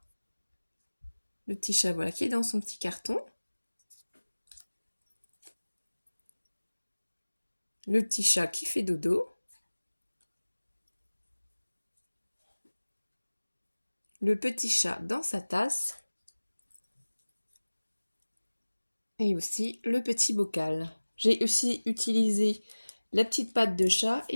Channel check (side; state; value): both; inverted; correlation -1.00